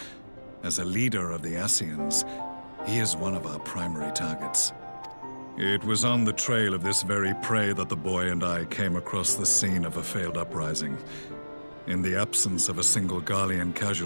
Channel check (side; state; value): both; inverted; correlation -1.00